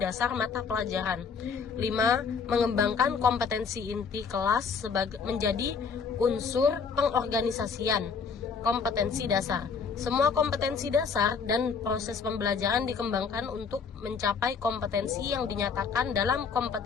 mata pelajaran. 5. Mengembangkan kompetensi inti kelas menjadi unsur pengorganisasian kompetensi dasar. Semua kompetensi dasar dan proses pembelajaran dikembangkan untuk mencapai kompetensi yang dinyatakan dalam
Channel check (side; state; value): right; quieter; 5.7 dB